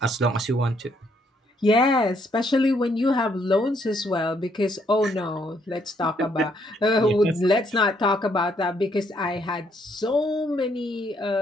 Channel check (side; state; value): both; normal; correlation 0.71